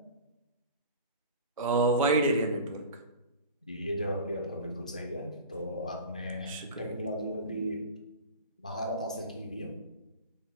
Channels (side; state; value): both; inverted; correlation -0.35